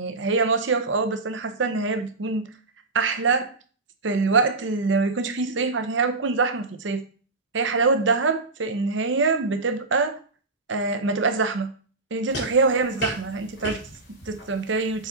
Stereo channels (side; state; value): left; quieter; 3.5 dB